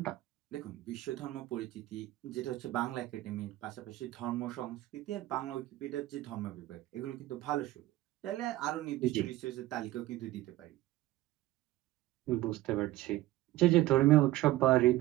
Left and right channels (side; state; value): left; quieter; 16.3 dB